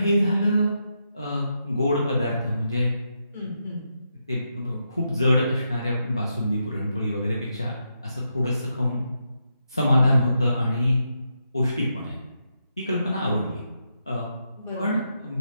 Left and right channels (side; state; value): both; inverted; correlation -0.83